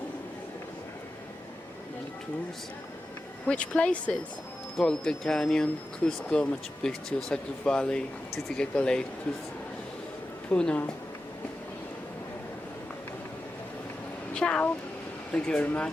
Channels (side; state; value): both; normal; correlation 0.92